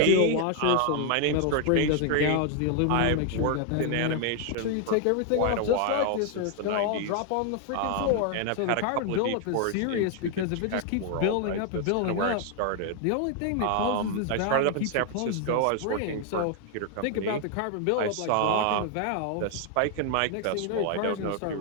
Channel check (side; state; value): both; different; correlation 0.00